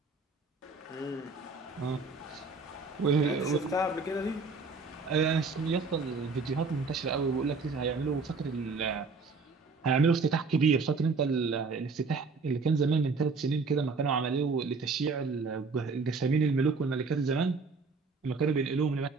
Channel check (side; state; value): left; quieter; 4.3 dB